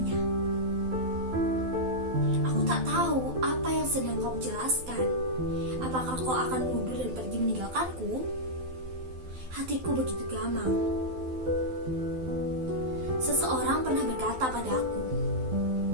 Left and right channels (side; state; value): left; late; 12 ms